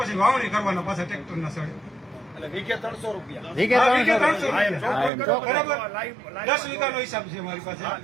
વાવણી કરવાના પાછા ટ્રેક્ટર ના સડે વીઘે 300 રૂપિયા બરાબર 10 વીઘાનો હિસાબ છે મારી પાસે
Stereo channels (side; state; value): left; drops out; at 5.1 s